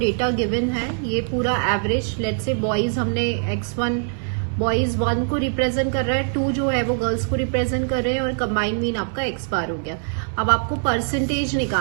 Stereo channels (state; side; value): silent; left; 63 dB below the other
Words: गिवन है, ये पूरा एवरेज, लेट्स से बॉयज हमने x1 बॉयज 1 को रिप्रेजेंट कर रहा है, 2 जो है वो गर्ल्स को रिप्रेजेंट कर रहे हैं, और कंबाइंड मीन आपका x बार हो गया। अब आपको परसेंटेज